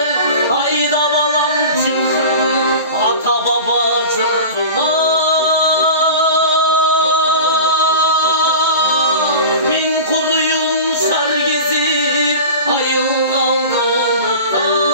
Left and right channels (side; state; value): both; inverted; correlation -0.34